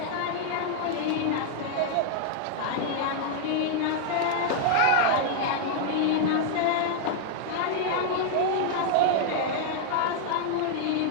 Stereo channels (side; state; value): both; different; correlation -0.01